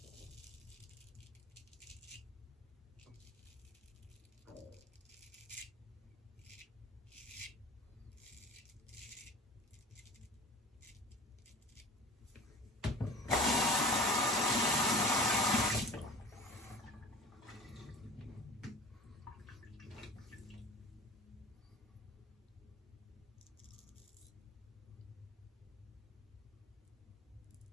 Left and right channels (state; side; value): normal; both; correlation 0.39